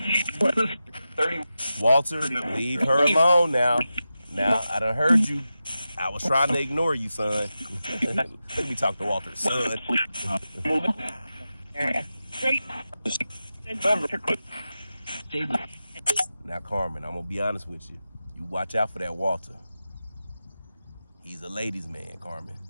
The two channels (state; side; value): inverted; both; correlation -0.92